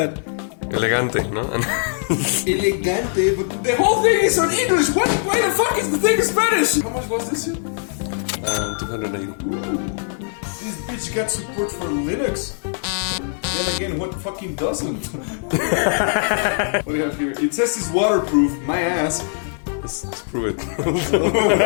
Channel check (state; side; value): silent; right; digital silence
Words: Elegante, ¿no? ELE-GATE, but the whole thing is on English! Why the fuck is the thing in Spanish? How much was this? 280. Ooh. This bitch got support for Linux. Then again, what fucking doesn't? What do you have here? It says it's waterproof, my ass. Let's prove it. I don't know